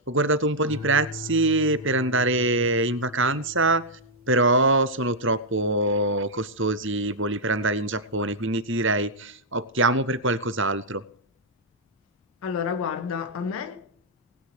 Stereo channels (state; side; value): normal; both; correlation -0.05